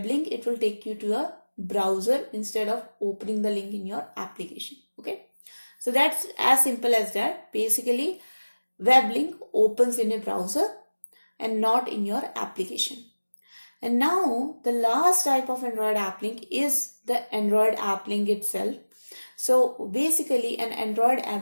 link, it will take you to a browser instead of opening the link in your application. Okay, so that's as simple as that. Basically, web link opens in a browser and not in your application. And now the last type of Android app link is the Android app link itself. So basically an Android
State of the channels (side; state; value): both; inverted; correlation -1.00